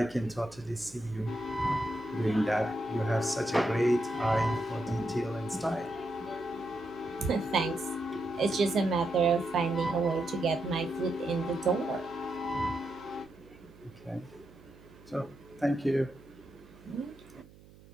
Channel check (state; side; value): noise; right; hum, 22 dB below the sound